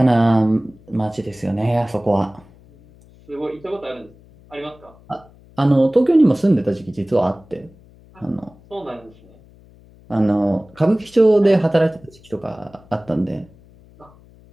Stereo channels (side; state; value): left; noise; hum, 26 dB below the sound